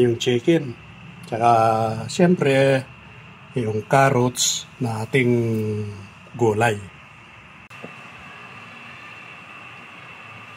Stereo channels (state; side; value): identical; both; correlation 1.00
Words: yung chicken. Tsaka siyempre yung carrots na ating gulay.